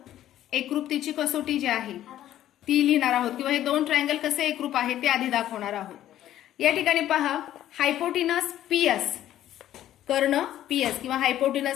एकरूपतेची कसोटी जी आहे ती लिहिणार आहोत किंवा हे दोन ट्रायंगल कसे एकरूप आहेत ते आधी दाखवणार आहोत. या ठिकाणी पहा, हायपोटिनस PS, कर्ण PS किंवा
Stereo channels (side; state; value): right; quieter; 12.5 dB